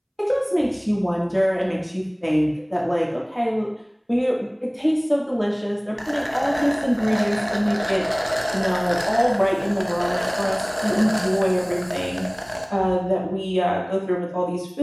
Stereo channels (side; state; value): both; identical; correlation 1.00